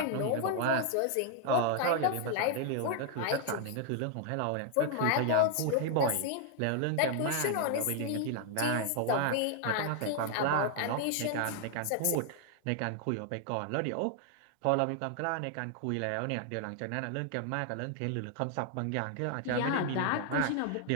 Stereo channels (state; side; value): different; both; correlation 0.00